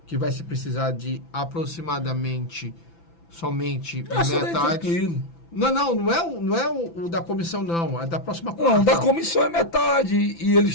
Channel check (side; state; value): right; late; 5.9 ms